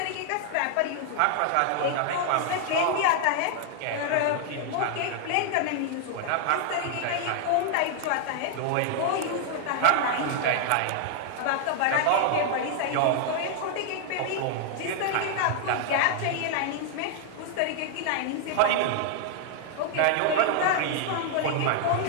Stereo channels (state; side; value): different; both; correlation 0.00